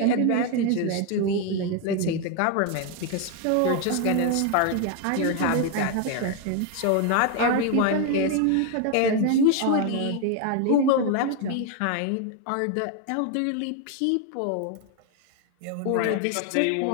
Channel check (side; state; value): both; different; correlation 0.01